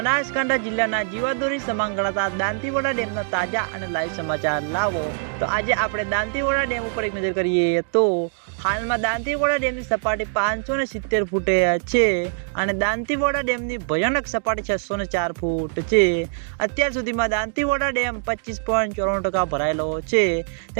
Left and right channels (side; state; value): left; silent; digital silence